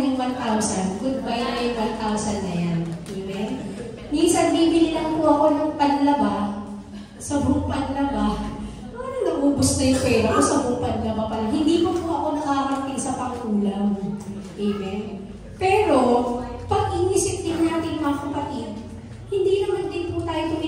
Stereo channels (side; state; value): both; identical; correlation 1.00